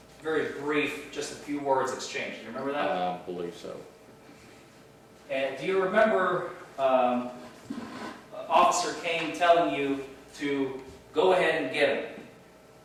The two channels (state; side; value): identical; both; correlation 1.00